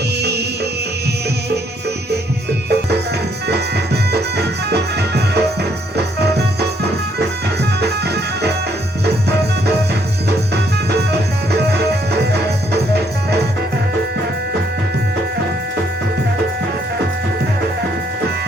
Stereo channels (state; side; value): normal; both; correlation 0.70